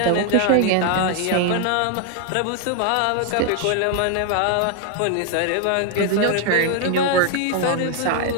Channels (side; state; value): both; different; correlation 0.00